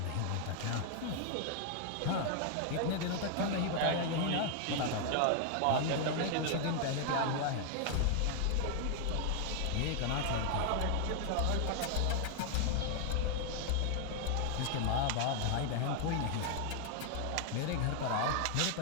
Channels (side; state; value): both; different; correlation 0.00